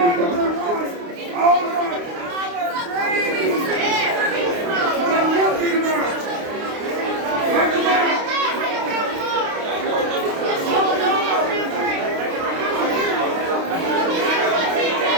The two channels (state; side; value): late; left; 29 ms